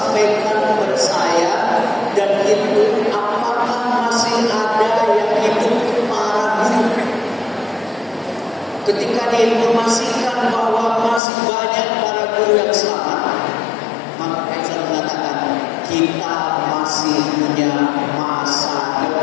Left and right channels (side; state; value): right; drops out; at 11.2 s